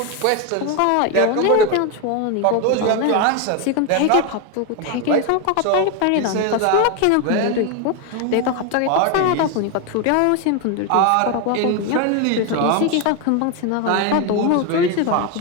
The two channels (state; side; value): different; both; correlation 0.01